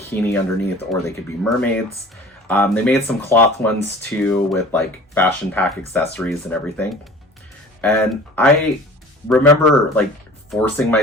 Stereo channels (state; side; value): normal; both; correlation 0.43